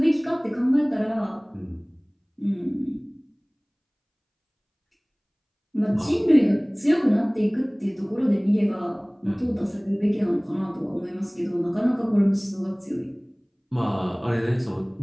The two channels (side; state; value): both; identical; correlation 1.00